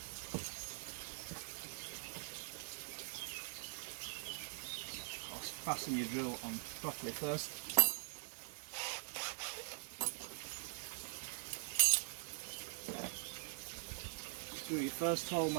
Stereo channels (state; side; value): silent; left; digital silence